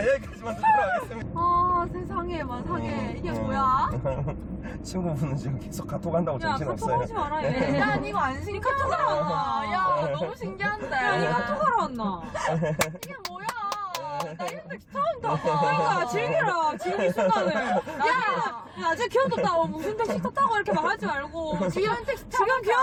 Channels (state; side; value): identical; both; correlation 1.00